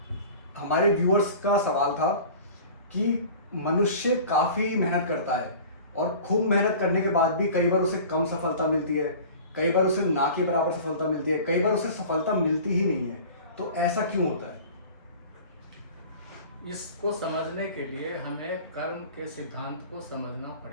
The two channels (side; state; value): both; inverted; correlation -0.41